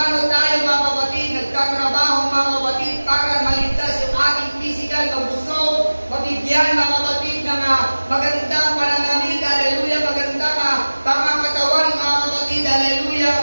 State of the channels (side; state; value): both; inverted; correlation -1.00